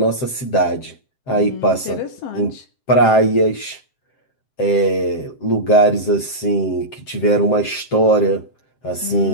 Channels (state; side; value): late; right; 7.7 ms